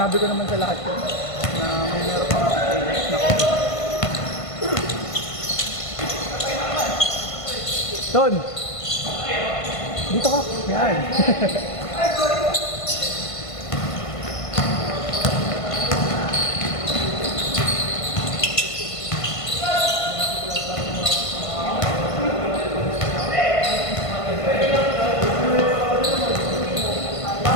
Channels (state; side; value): late; right; 1.5 ms